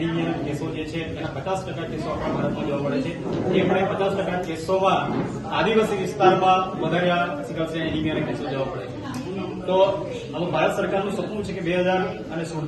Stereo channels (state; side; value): identical; both; correlation 1.00